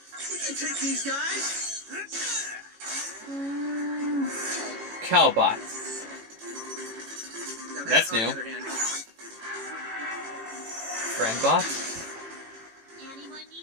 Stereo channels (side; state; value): left; late; 18 ms